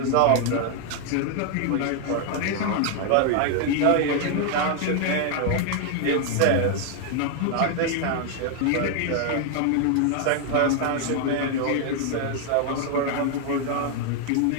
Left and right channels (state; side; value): different; both; correlation 0.00